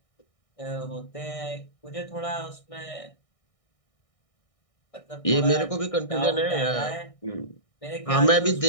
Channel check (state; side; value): late; right; 1.6 ms